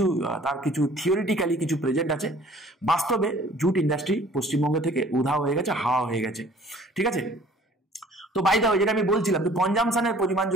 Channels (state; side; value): normal; both; correlation 0.53